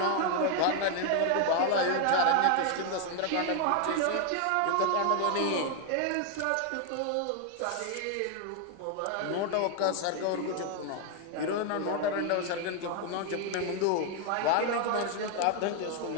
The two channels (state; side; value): different; both; correlation 0.00